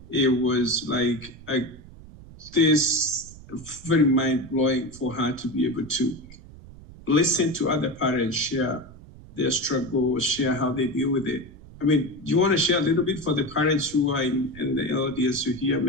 it was like this very mind-blowing for her to be able to listen to other parents share their struggles, share how they deal with it. I mean, do you want to share a little bit for the parents who are in the audience to hear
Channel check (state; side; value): noise; right; rumble, 19 dB below the sound